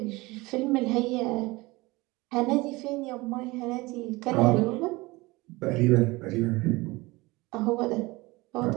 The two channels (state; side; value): quieter; left; 22.1 dB